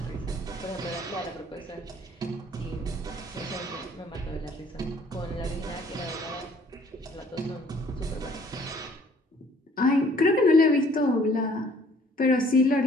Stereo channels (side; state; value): both; normal; correlation 0.59